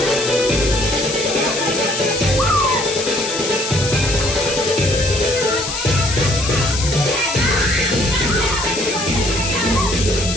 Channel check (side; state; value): left; noise; hiss, 5 dB below the sound